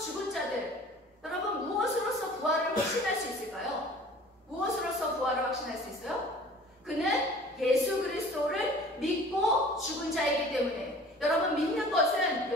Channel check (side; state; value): both; normal; correlation 0.47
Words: 자들, 여러분 무엇으로서 부활을 확신할 수 있을까요? 무엇으로서 부활을 확신할 수 있어요? 그는 예수 그리스도를 믿고 죽은 자이기 때문에, 여러분 믿는 것은